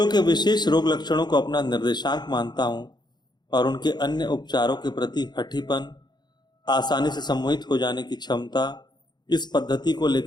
के विशेष रोग लक्षणों को अपना निर्देशांक मानता हूँ और उनके अन्य उपचारों के प्रति हठीपन, आसानी से सम्मोहित हो जाने की क्षमता, इस पद्धति को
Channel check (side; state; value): right; late; 0.21 ms